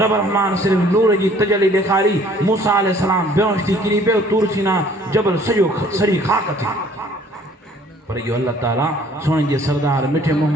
رحمان صرف نور جی تجلی دکھاری موسیٰ علیہ السلام بیونشتی کری بیو تور سینا جبل سجو سری خاک تھی پر یہ اللہ تعالیٰ سونے جے سردار مٹھے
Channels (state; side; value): normal; both; correlation 0.56